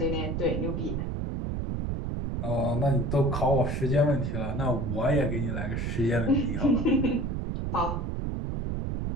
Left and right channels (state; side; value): noise; right; rumble, 2 dB below the sound